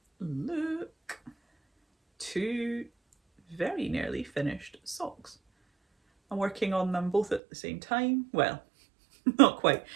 look, 2 very nearly finished socks. I'm working on them both at the same time. Well, not quite.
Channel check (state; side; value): drops out; left; at 7.4 s